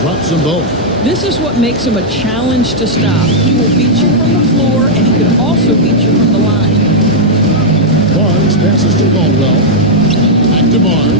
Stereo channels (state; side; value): normal; both; correlation -0.05